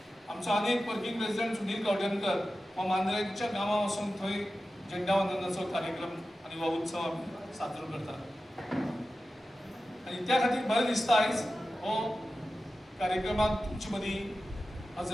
आमचो आनीक वर्किंग प्रेसिडेंट सुनील गावडेकर हो मांद्रेच्या गांवां वचून थंय झेंडावंदनाचो कार्यक्रम आनी हो उत्सव आमी साजरो करतात। आनी त्या खातीर बरें दिसता आयज हो कार्यक्रमाक तुमचे मदीं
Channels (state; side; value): normal; both; correlation 0.94